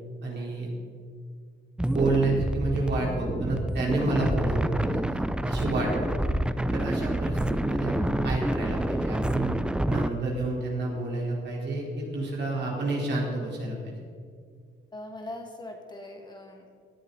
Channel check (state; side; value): normal; both; correlation 0.81